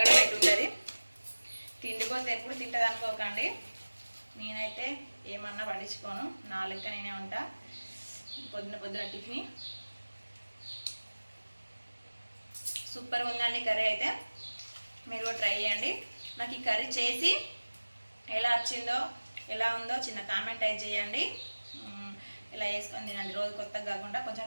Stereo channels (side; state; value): both; inverted; correlation -1.00